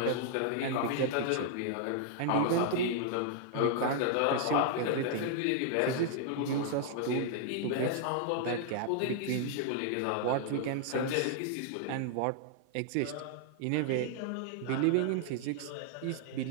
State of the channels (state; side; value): different; both; correlation -0.01